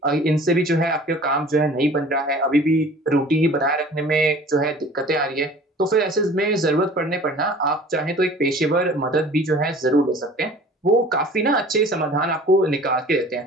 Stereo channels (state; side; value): normal; both; correlation 0.46